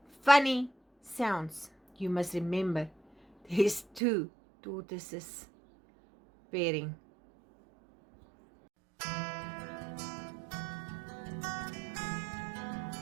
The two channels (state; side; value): drops out; left; at 4.0 s